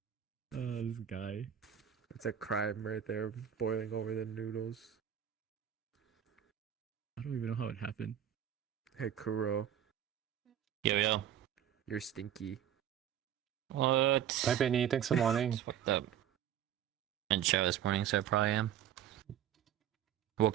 This guy. It's a crime right there, boiling over the noodles. I don't even know how it happened. Hey Kuro, Yo. you're stinky. What? Bye, Benny. Thanks for morning. Just woke up. And show this morning, so I probably am.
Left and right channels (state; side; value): quieter; left; 9.9 dB